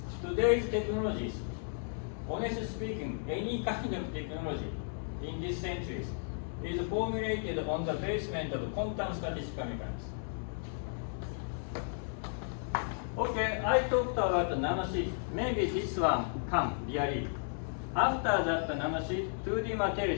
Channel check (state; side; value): silent; right; digital silence